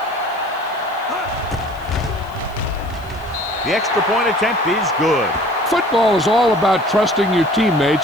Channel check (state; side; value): noise; left; hiss, 27 dB below the sound